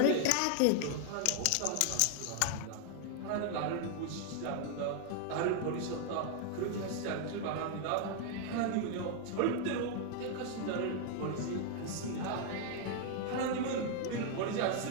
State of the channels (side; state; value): both; different; correlation 0.00